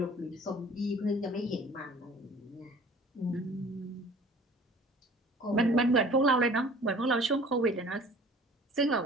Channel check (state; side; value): normal; both; correlation 0.48